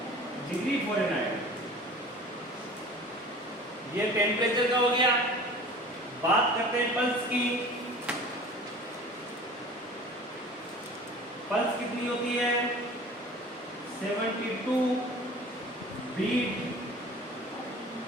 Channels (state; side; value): normal; both; correlation 0.42